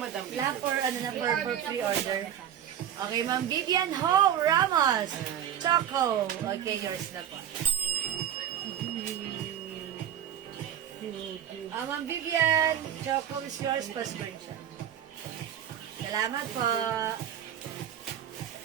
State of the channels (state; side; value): quieter; left; 10.3 dB